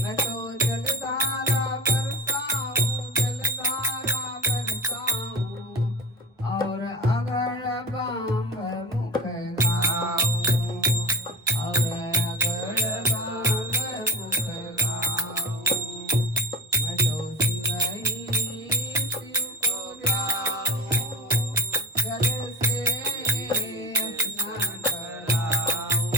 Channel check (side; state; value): both; normal; correlation 0.32